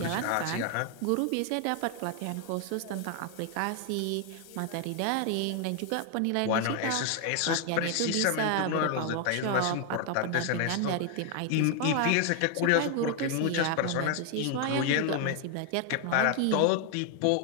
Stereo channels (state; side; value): different; both; correlation 0.00